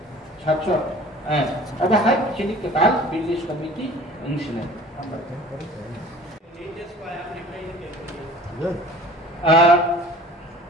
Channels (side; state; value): both; normal; correlation 0.46